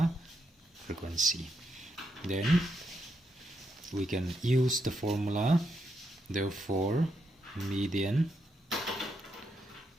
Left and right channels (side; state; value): both; normal; correlation 0.80